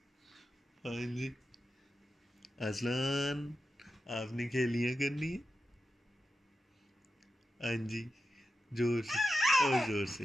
ہاں جی اذلان آپ نے کھیلیاں کرنی ہے. ہاں جی زور سے، اور زور سے،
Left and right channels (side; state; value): both; normal; correlation 0.91